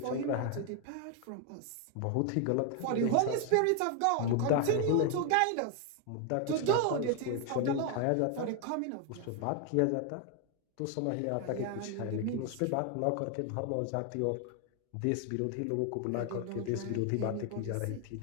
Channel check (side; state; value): both; different; correlation 0.01